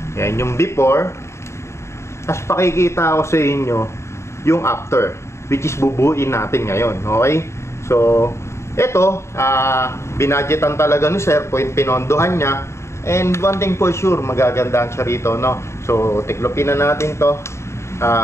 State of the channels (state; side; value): late; right; 0.13 ms